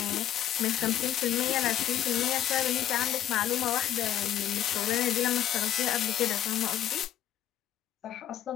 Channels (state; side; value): quieter; right; 11.6 dB